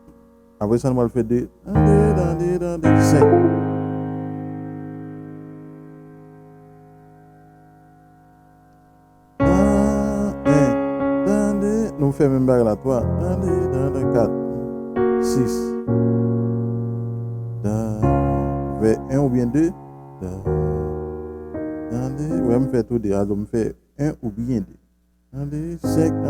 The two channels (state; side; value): identical; both; correlation 1.00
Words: Après ça, nous allons faire 2. 5. Nous faisons même bague là, 3. 4. 6. Vers 1 ou bien 2. Ouais, me fait tout deux. Alors, me fait 1 ou bien 2. 5.